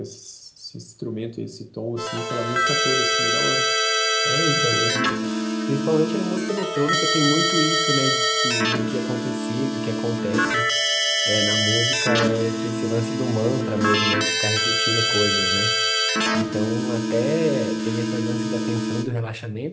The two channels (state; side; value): identical; both; correlation 1.00